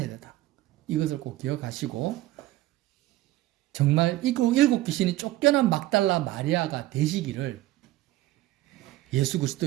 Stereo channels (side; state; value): left; quieter; 16.3 dB